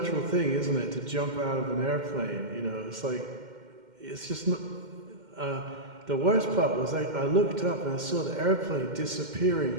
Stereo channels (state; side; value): late; left; 2.1 ms